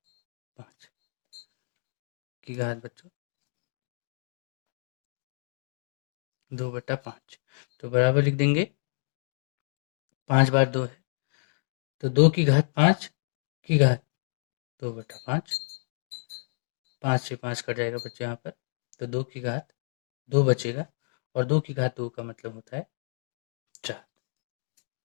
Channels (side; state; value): right; silent; digital silence